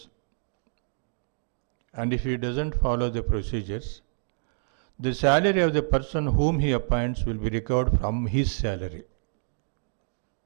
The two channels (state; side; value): silent; left; digital silence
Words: and if he doesn't follow the procedures, the salary of the person whom he appoints will be recovered from his salary,